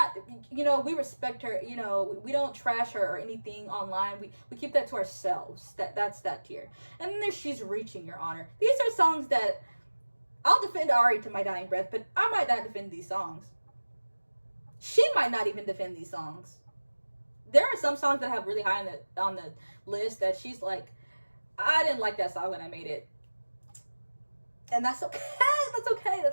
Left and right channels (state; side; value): inverted; both; correlation -1.00